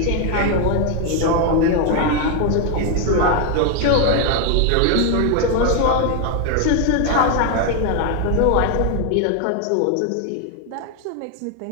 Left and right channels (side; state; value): both; different; correlation 0.01